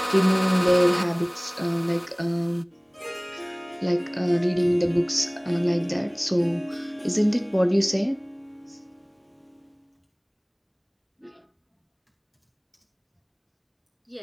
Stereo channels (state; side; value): identical; both; correlation 1.00